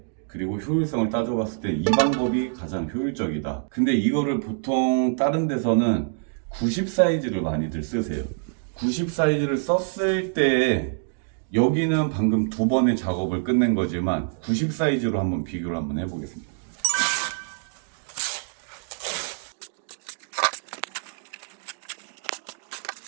그리고 효율성을 따져봤을 때 이 방법이 가장 효율적이다. 근데 이거를 보통 다른 데서는 90 사이즈를 많이들 쓰세요. 90 사이즈를 썼을 때 여기는 방금 두 번의 작업을 끝낸 거지만 90 사이즈로 한번 비교를 한번 해보겠습니다.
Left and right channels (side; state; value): left; silent; digital silence